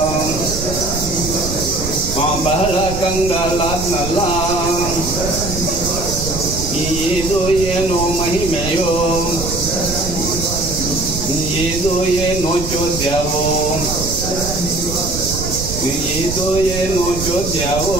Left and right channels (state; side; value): noise; right; rumble, 6 dB below the sound